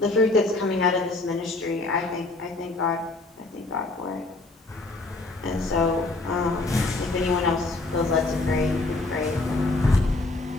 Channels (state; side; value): quieter; right; 3.1 dB